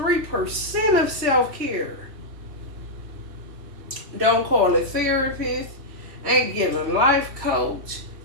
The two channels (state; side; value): late; left; 3.1 ms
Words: of self-care. Don't call a therapist, ain't getting a life coach,